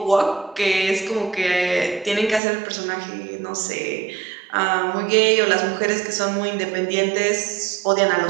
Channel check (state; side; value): drops out; left; at 2.4 s